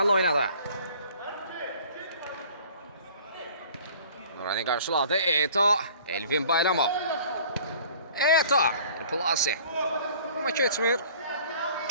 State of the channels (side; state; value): both; inverted; correlation -0.50